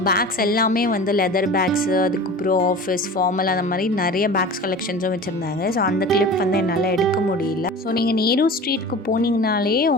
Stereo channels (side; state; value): both; normal; correlation 0.36